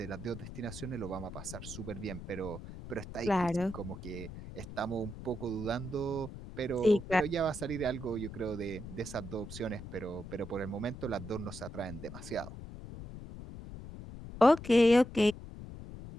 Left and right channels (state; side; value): noise; left; rumble, 11 dB below the sound